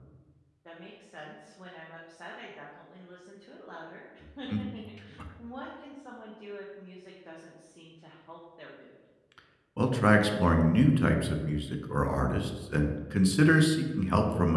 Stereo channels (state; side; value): identical; both; correlation 1.00